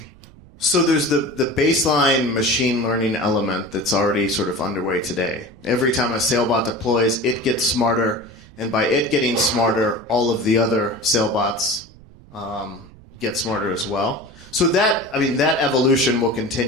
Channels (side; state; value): right; noise; rumble, 23 dB below the sound